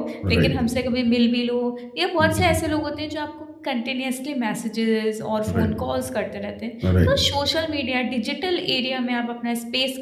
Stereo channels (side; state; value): both; identical; correlation 1.00